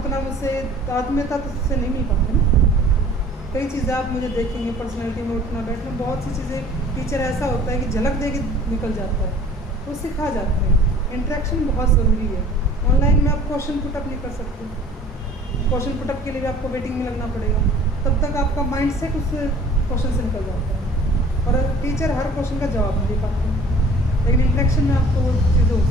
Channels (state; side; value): normal; both; correlation 0.49